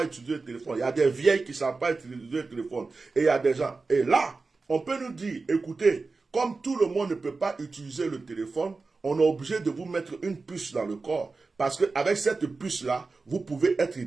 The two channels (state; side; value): quieter; left; 4.0 dB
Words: utiliser le téléphone. Il y a des vieilles qui ne savent pas utiliser le téléphone. Et il y a des gens. Et là, on peut nous dire, écoutez, comme tout le monde ne peut pas utiliser le téléphone, on est obligé de vous mettre une puce dans le corps. Parce qu'avec cette puce-là, vous pouvez être